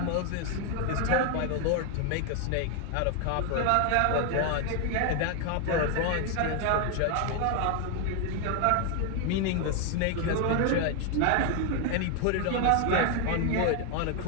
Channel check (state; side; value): different; both; correlation 0.01